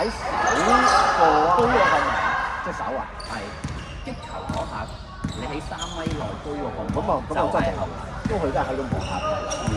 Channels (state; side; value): identical; both; correlation 1.00